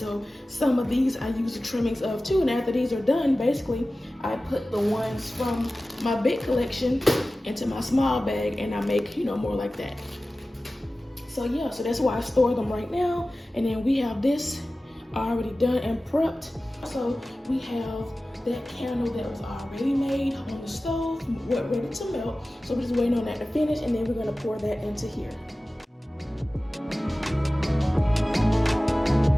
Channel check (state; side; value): normal; both; correlation 0.96